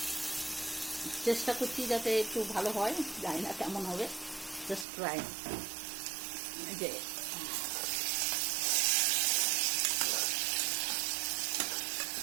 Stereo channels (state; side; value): drops out; left; at 4.9 s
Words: চেষ্টা করছি যাতে একটু ভালো হয়, জানি না কেমন হবে, জাস্ট ট্রাই। যে